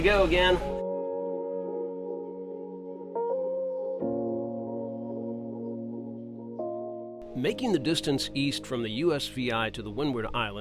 go again. Making the distance east from the USVI to the Windward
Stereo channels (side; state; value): both; identical; correlation 1.00